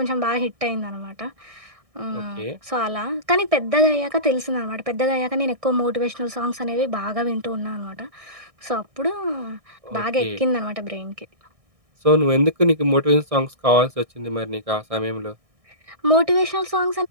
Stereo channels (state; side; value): late; left; 1.6 ms